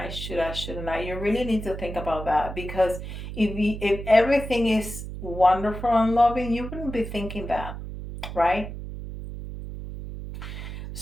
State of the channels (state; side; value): noise; right; hum, 9 dB below the sound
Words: you really need to think about that, because if everything is wonderful and loving, you wouldn't be thinking that, right?